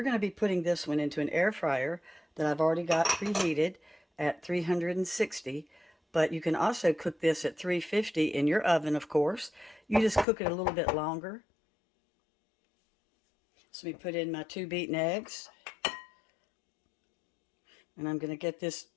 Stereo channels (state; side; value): drops out; right; at 10.2 s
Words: to be putting this one into an air fryer that I've already got preheated at 360, but you can also cook this at 350 in your oven, of course. You just cook it a little bit longer. So we put in my 2 beaten eggs, and I'm going to get this